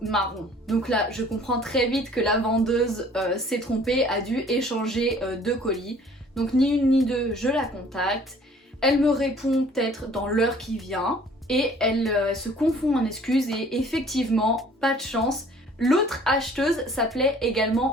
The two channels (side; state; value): both; normal; correlation 0.54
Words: Donc là je comprends très vite que la vendeuse s'est trompée, a dû échanger deux colis. Donc ni une ni deux, je la contacte. Elle me répond peut-être dans l'heure qui vient. Et elle se confond en excuses et effectivement, pas de chance. L'autre acheteuse s'appelait